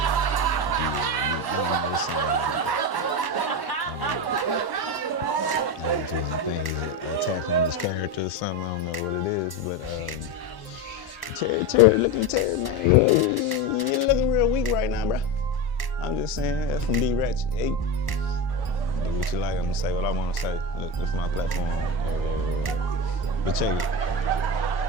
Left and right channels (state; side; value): late; right; 1.1 ms